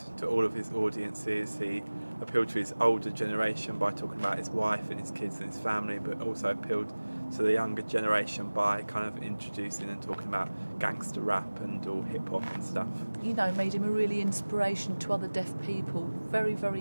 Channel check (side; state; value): both; inverted; correlation -1.00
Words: to all of his audiences. He appealed to his older generation by talking about his wife and his kids and his family, but also appealed to the younger generation by kind of introducing and talking about gangster rap and all hip hop and stuff. You know, made him a really inspiration to other deaf people. Very,